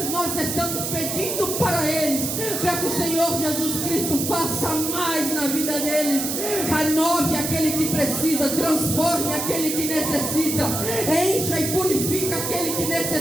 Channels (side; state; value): right; noise; hiss, 3 dB below the sound